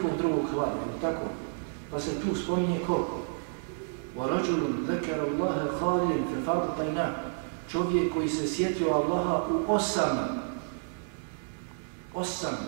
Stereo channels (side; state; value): left; silent; digital silence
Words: drugog hlada, ali tako. Pa se tu spominje ko? وَرَجُلٌ ذَكَرَ اللَّهَ خَالِيًا فَفَاضَتْ عَيْنَاهُ. Čovjek koji se sjetio Allaha u 8.